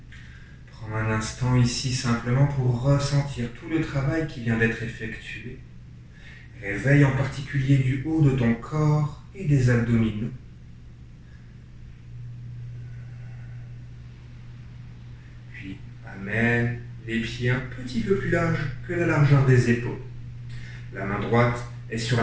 Prends un instant ici simplement pour ressentir tout le travail qui vient d'être effectué. Réveille en particulier du haut de ton corps et des abdominaux. Puis amène les pieds un petit peu plus larges que la largeur des épaules. La main droite est sur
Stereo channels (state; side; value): identical; both; correlation 1.00